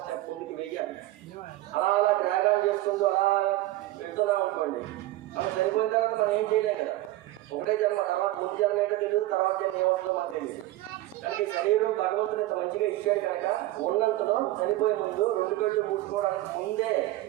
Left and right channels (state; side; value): quieter; left; 16.4 dB